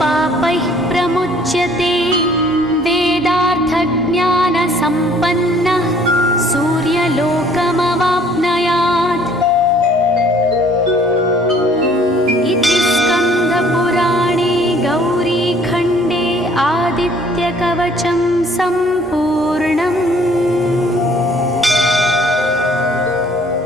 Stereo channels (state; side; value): normal; both; correlation 0.57